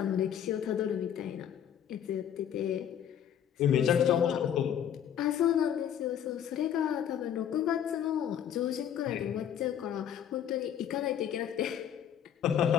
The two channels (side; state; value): right; quieter; 9.4 dB